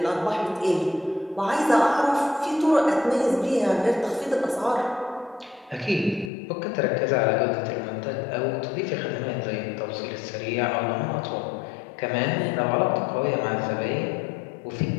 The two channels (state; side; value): drops out; right; at 6.3 s